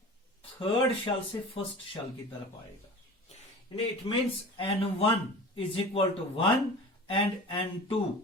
थर्ड शेल से फर्स्ट शेल की तरफ आएगा, it means n1 is equal to 1 and n2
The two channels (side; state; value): both; normal; correlation 0.37